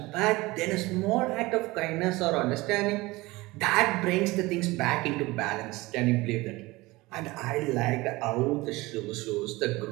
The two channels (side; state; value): left; quieter; 21.1 dB